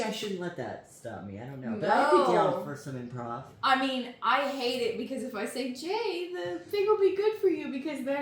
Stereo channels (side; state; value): both; identical; correlation 1.00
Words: I shouldn't let that stop me. I don't know, but I'd be down for some improv. I mean, I hate it because if I say Jay, the thing will be good for you because